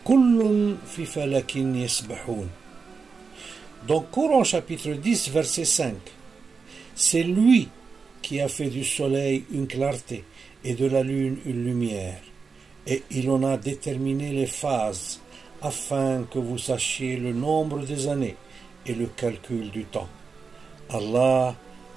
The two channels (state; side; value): quieter; left; 5.0 dB